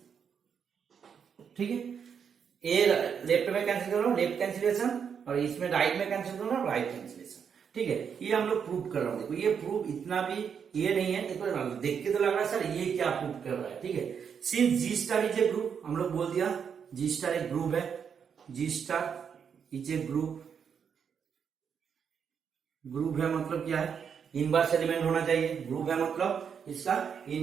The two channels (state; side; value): quieter; left; 7.1 dB